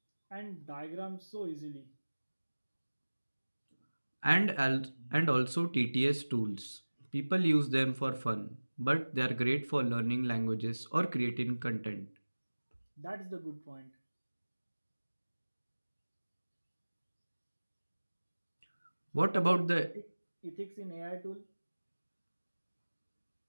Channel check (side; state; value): both; inverted; correlation -1.00